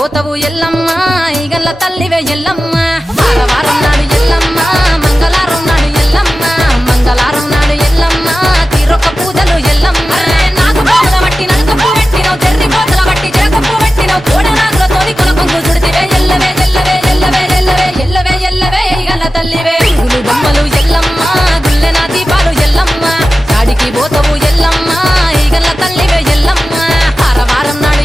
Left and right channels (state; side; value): normal; both; correlation 0.94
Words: ఎల్లమ్మ ఈగల్ల తల్లివే ఎల్లమ్మ వారం నాడు ఎల్లమ్మ మంగళవారం నాడు ఎల్లమ్మ మంగళవారం నాడు ఎల్లమ్మ తీరొక్క పూజలు ఎల్లమ్మ నాకు పూల బట్టి నడుకప్పు పెట్టినవు తెర్రి పోతల బట్టి జరకప్పు పెట్టినవు కోడ నాగులతోని కొనకొంగు చుడితివే ఎల్లవే ఎల్లవే ఎల్లవే ఎల్లవే ఎల్లవే ఎల్లవే ఈగల్ల తల్లివే పురుగులు బొమ్మలు ఎల్లమ్మ గుల్లెన దీపాలు ఎల్లమ్మ యాడికి పోతవు ఎల్లమ్మ ఈగల్ల తల్లివే ఎల్లమ్మ వారం నాడు